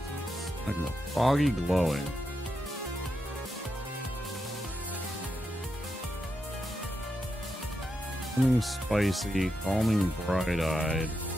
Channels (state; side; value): normal; both; correlation 0.85